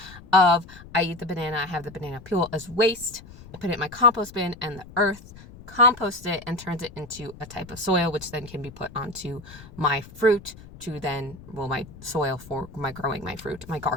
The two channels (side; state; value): left; noise; rumble, 18 dB below the sound